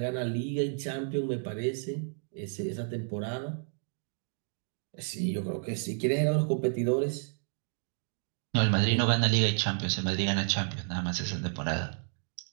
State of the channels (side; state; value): left; silent; 57 dB below the other